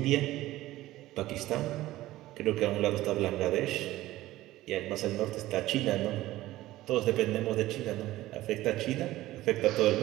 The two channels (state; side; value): quieter; left; 16.3 dB